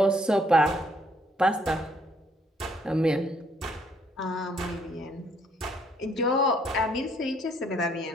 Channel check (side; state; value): both; normal; correlation 0.67